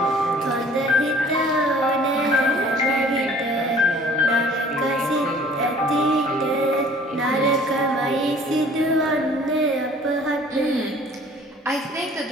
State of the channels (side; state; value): both; normal; correlation 0.52